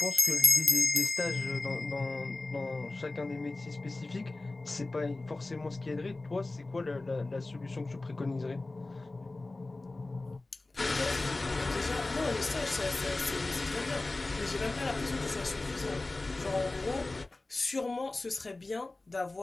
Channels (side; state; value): right; quieter; 3.1 dB